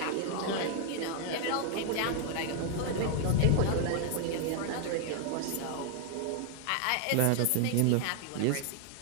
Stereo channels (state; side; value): different; both; correlation 0.00